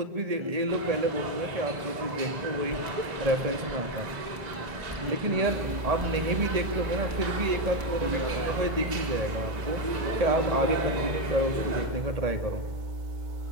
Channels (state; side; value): late; left; 1.9 ms